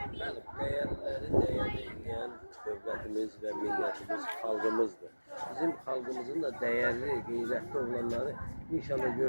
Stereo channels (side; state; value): both; inverted; correlation -1.00